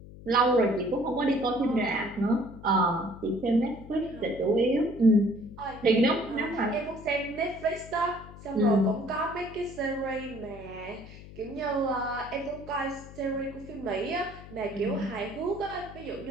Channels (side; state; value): left; noise; hum, 16 dB below the sound